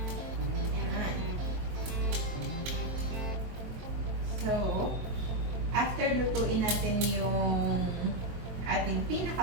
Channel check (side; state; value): left; late; 22 ms